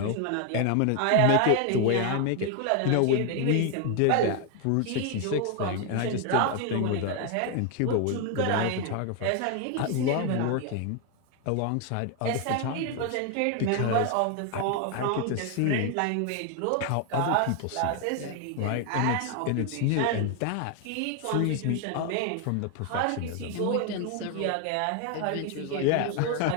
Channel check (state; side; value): different; both; correlation 0.01